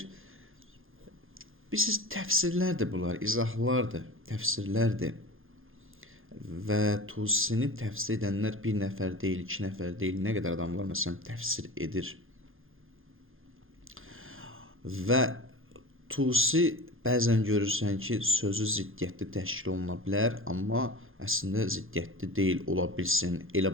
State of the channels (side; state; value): left; late; 0.60 ms